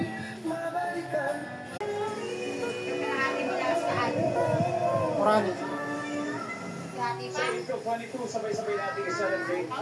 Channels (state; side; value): identical; both; correlation 1.00